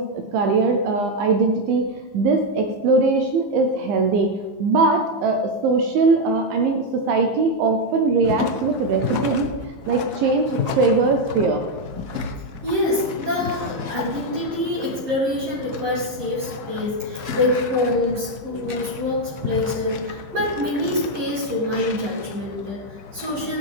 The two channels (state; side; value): late; left; 15 ms